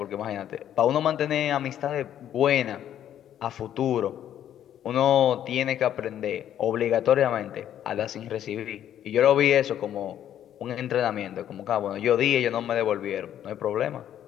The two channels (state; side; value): quieter; right; 10.7 dB